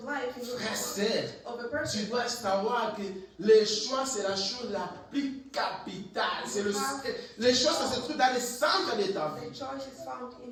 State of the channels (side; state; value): both; identical; correlation 1.00